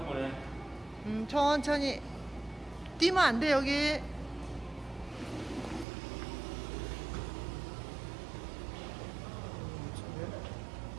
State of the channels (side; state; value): left; drops out; at 5.9 s